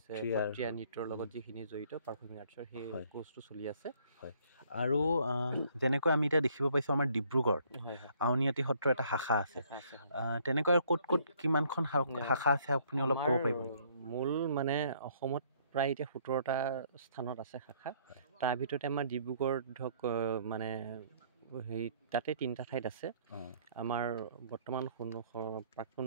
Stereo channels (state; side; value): inverted; both; correlation -0.63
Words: সত্ৰীয়া নৃত্যৰ লগত যিখিনি জড়িত পাৰফৰ্মিং আৰ্টছৰ সেই কোৰ্চটো চলি আছে। আৰু যেনেকৈ আমি এতিয়া দেখিব পাইছোঁ আমাৰ ডিব্ৰুগড়ত আউনীআটী সত্ৰৰ এটা শাখা আছে, তেনেকৈ ক'ত কিমানখন শাখা আছে আপুনি অলপ ক'ব পাৰিব? মূল মানে অসমত প্ৰায় এতিয়া 17টা স্থানত আছে শাখা। তাৰ ভিতৰতে আমাৰ ডিব্ৰুগড় ধৰক মানে হেৰি তাতে 3টা ঠাইত আছে। আমাৰ বৰ্তমান প্ৰাক্তন